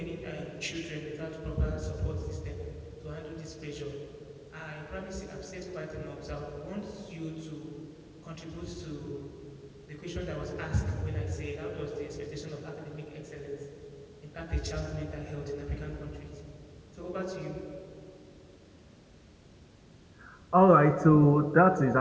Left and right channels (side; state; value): both; identical; correlation 1.00